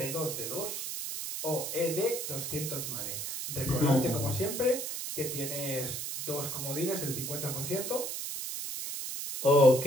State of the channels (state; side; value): noise; right; hiss, 4 dB below the sound